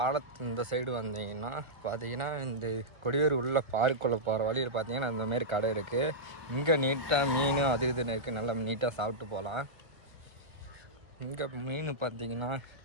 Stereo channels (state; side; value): late; left; 1.3 ms